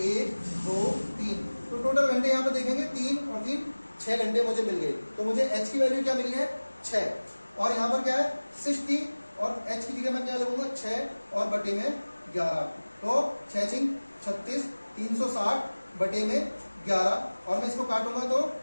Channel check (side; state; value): both; inverted; correlation -1.00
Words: 1, 2, 3। तो टोटल घंटे यहाँ पे देखेंगे 3 और 3 6 घंटे मुझे मिल गए। तो मुझे h की वैल्यू क्या मिली है, 6। और यहाँ पर क्या है 60 और h की जगह मैं क्या लगूंगा, 6 और बटे में 11। तो 6 × 36, 360 बटे में 11। और मैं इसको काटूंगा तो